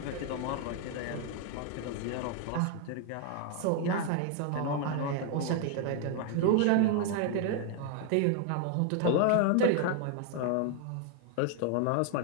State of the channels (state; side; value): different; both; correlation 0.00